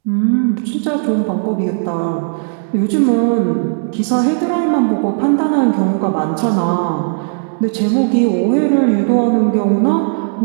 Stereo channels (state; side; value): silent; left; digital silence